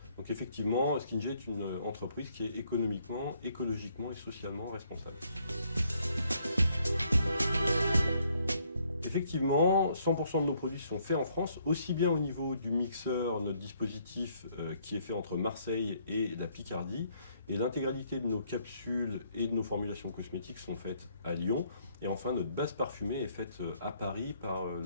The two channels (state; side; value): inverted; both; correlation -0.68